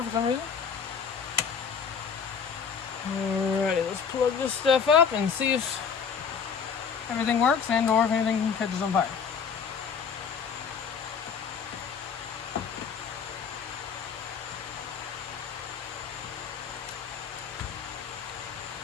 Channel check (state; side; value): quieter; right; 6.6 dB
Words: for some reason. Alrighty, let's plug this stuff up and see if everything works and or if anything catches on fire.